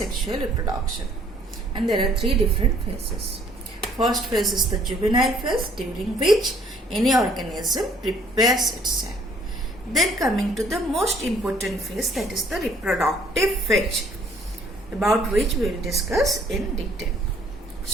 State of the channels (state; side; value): normal; both; correlation 0.61